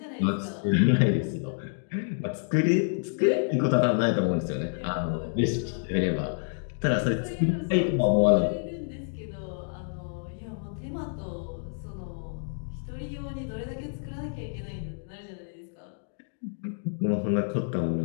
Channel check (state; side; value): silent; right; digital silence